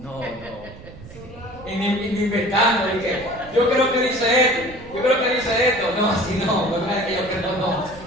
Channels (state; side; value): noise; right; rumble, 17 dB below the sound